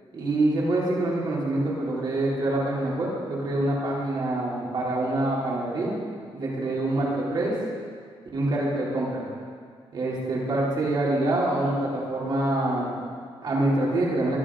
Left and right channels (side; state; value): both; normal; correlation 0.76